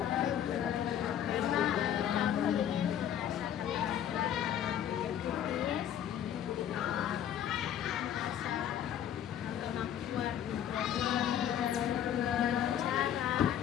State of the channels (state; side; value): quieter; right; 10.2 dB